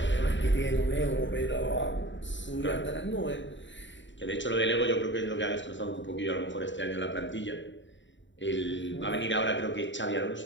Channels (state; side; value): late; right; 0.54 ms